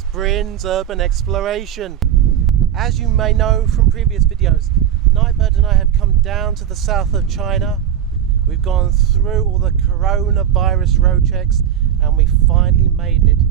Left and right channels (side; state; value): left; quieter; 9.8 dB